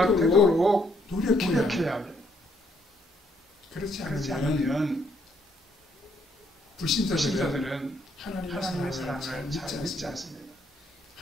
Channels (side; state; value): both; normal; correlation 0.70